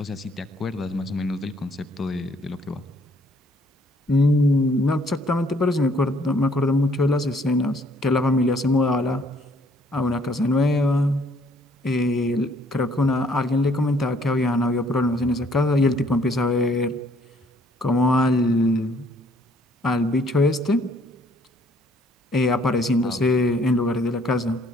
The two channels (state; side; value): normal; both; correlation 0.63